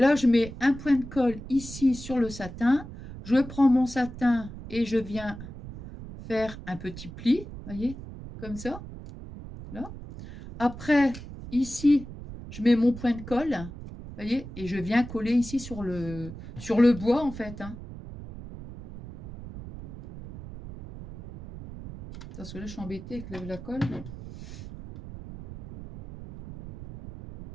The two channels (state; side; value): noise; right; rumble, 12 dB below the sound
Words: je mets un point de colle ici sur le satin. Je prends mon satin et je viens faire un petit pli, voyez, comme ça. Là. Après, ici, je mets mon point de colle, voyez, et je viens coller ici sur le bois, en fait. Hein. Parce que là, je suis embêtée avec la colle.